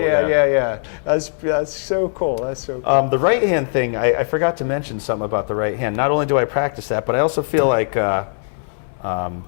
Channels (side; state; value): right; silent; 63 dB below the other